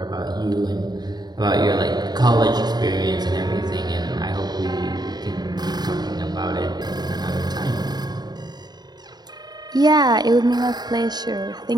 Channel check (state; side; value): late; left; 0.20 ms